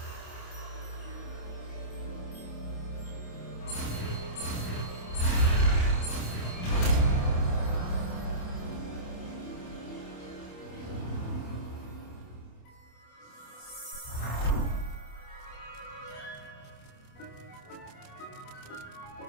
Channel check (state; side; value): late; right; 28 ms